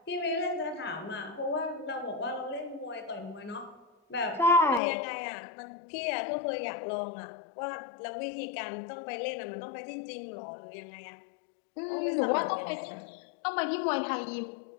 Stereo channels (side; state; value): right; drops out; at 4.8 s